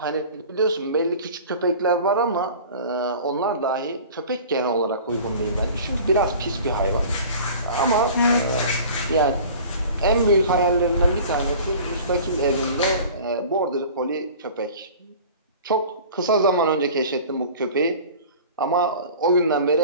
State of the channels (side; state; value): both; inverted; correlation -0.42